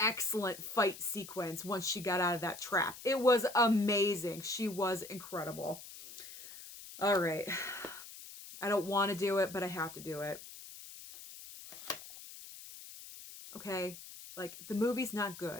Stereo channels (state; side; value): noise; left; hiss, 14 dB below the sound